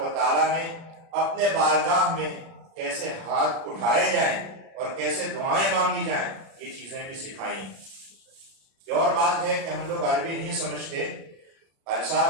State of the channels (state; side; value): late; left; 36 ms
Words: و تعالیٰ نے اپنے بارگاہ میں کیسے ہاتھ اٹھائے جائیں اور کیسے دعائیں مانگی جائیں یہ چیزیں بھی سکھائیں. یہ اور بات ہے کہ ہم لوگ عربی نہیں سمجھتے. قاری